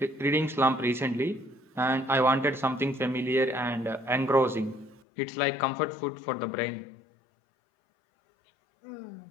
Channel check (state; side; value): drops out; right; at 5.0 s